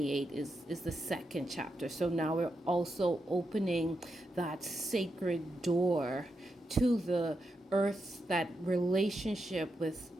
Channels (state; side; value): normal; both; correlation 0.85